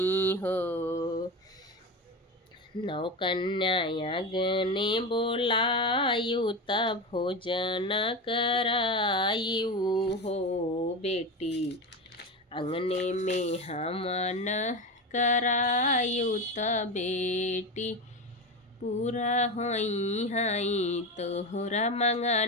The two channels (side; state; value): both; normal; correlation 0.21